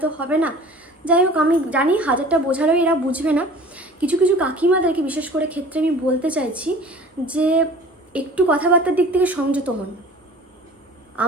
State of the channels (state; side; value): normal; both; correlation 0.44